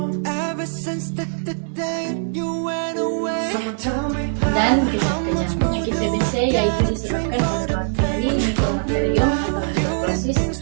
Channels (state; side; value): silent; left; 65 dB below the other